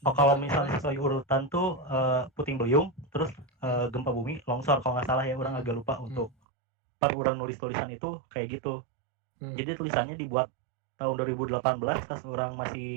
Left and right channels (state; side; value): drops out; left; at 6.4 s